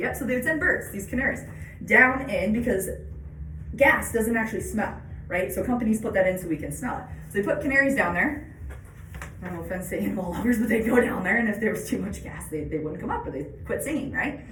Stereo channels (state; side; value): identical; both; correlation 1.00